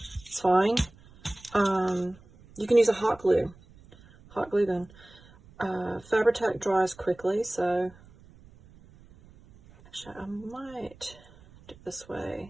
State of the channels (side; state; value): right; noise; rumble, 24 dB below the sound